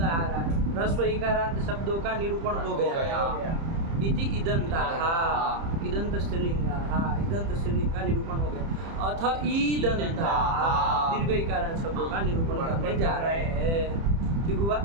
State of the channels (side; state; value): left; late; 30 ms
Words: आ रहा है। ह्रस्व इकारांत शब्दों का निरूपण हो गया। इति इदंता, हाँ इदंत स्त्रीलिंग, हाँ इदंत स्त्रीलिंग का निरूपण हो गया। अथ ईदंता, दीर्घ इकारांत शब्दों का निरूपण करने जा रहे हैं। ठीक हुआ?